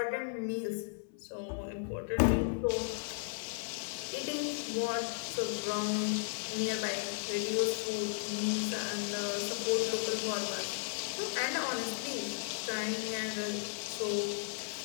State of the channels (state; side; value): silent; right; 54 dB below the other